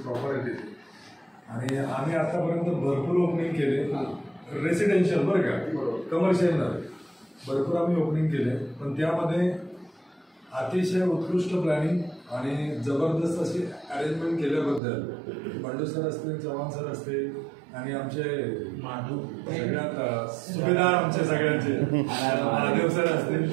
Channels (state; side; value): drops out; left; at 14.8 s